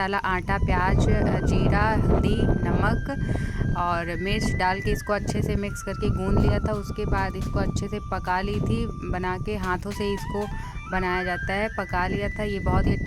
आटा, प्याज, जीरा, हल्दी, नमक और मिर्च डाल के इसको अच्छे से मिक्स करके गूंद लिया था। उसके बाद इसको अच्छे से पका ली थी, बना के हाथों से इसको बनाया जाता है। पका लिया था। ये बहुत ही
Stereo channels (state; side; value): identical; both; correlation 1.00